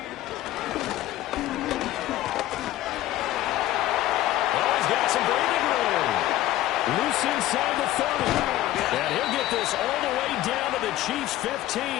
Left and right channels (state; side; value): quieter; right; 14.7 dB